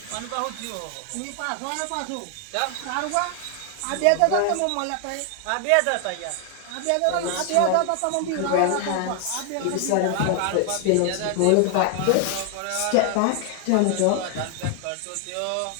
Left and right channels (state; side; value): different; both; correlation 0.00